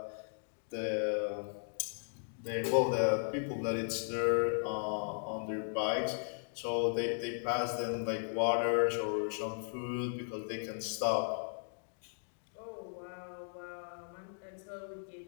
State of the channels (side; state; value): right; silent; digital silence